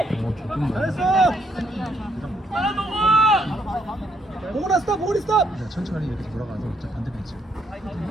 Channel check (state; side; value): normal; both; correlation 0.73